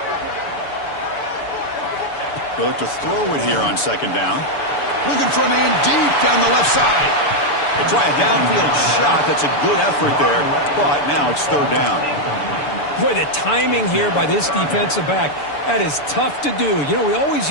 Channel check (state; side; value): late; right; 6.9 ms